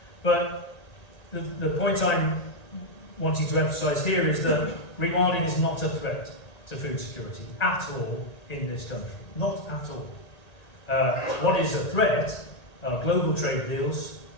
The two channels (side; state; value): right; late; 1.8 ms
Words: But the point I'm wanting to emphasise here is that rewilding is not a threat to food security at all in this country. Not at all. What is a threat are global trade deals,